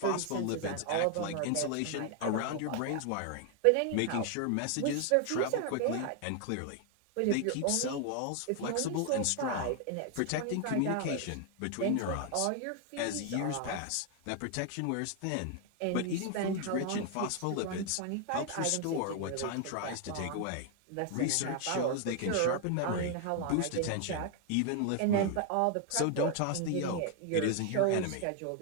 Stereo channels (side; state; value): both; different; correlation 0.00